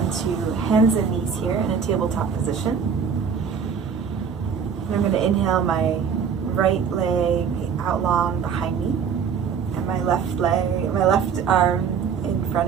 hands and knees here in a tabletop position. And I'm going to inhale my right leg out long behind me. My left arm in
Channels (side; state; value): left; quieter; 6.7 dB